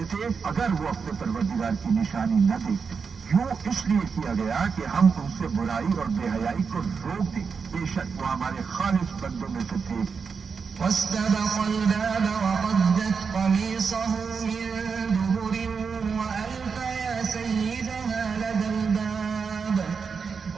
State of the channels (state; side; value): quieter; left; 5.6 dB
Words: اگر وہ اپنے پروردگار کی نشانی نہ دیکھتے. یوں اس لیے کیا گیا کہ ہم ان سے برائی اور بے حیائی کو روک دیں. بے شک وہ ہمارے خالص بندوں میں سے تھے. واستبق الباب وقدت قميصه من دبر وألف يا سيدها لدى الباب